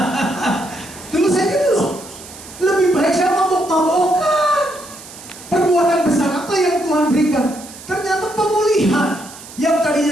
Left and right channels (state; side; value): noise; right; hiss, 17 dB below the sound